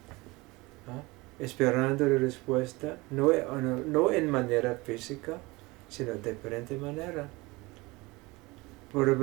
esperando la respuesta, no en manera física, sino de diferente manera.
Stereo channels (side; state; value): left; quieter; 23.1 dB